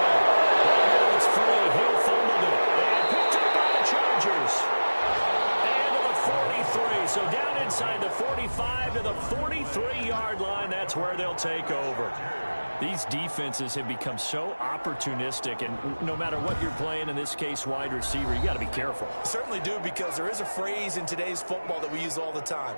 It's free. Hill fumbled it. And picked up by the Chargers. And to the 43. So down inside the 45 to the 43-yard line. That's where they'll take over. These defenses have become so opportunistic, and no matter what you're playing, in this case wide receiver, you got to be careful. Certainly do, because there is a phrase in today's football that we use all the time:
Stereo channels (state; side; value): inverted; both; correlation -1.00